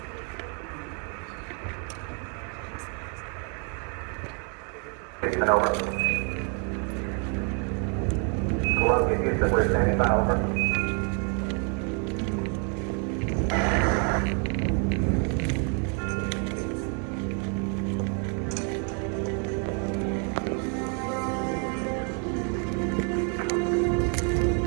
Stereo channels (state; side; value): quieter; left; 39.2 dB